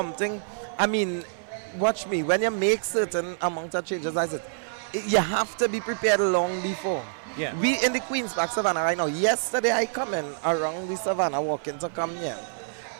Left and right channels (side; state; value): left; silent; 56 dB below the other